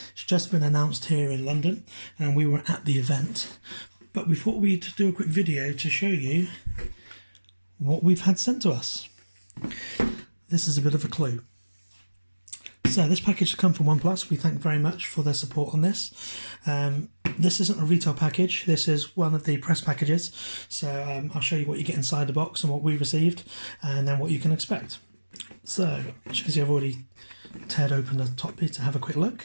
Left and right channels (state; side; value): inverted; both; correlation -1.00